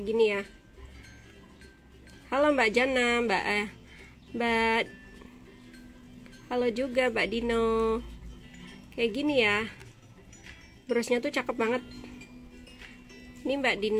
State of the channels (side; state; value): both; identical; correlation 1.00